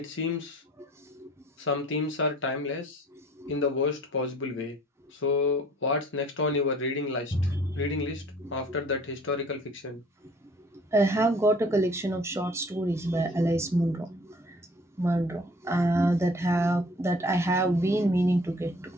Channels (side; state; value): both; normal; correlation 0.53